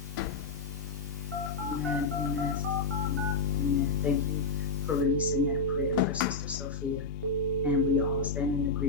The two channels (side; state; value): right; quieter; 3.9 dB